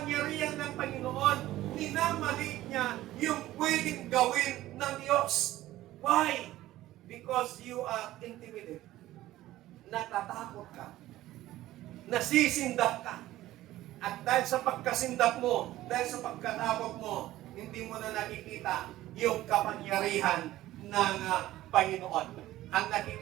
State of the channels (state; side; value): quieter; left; 15.4 dB